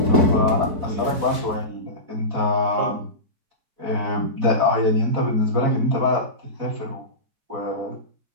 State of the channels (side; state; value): left; late; 4.6 ms